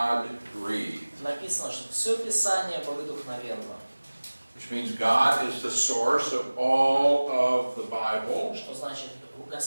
Написано, что все Писание богодухновенно. Which means God is the source of all of the Bible. Что значит,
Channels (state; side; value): inverted; both; correlation -1.00